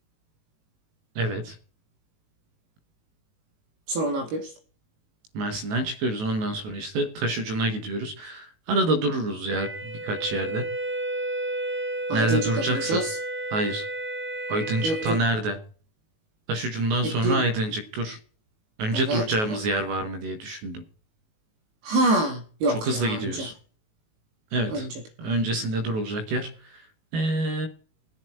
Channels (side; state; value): left; late; 19 ms